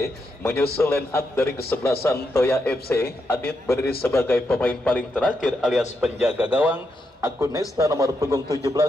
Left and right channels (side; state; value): both; normal; correlation 0.82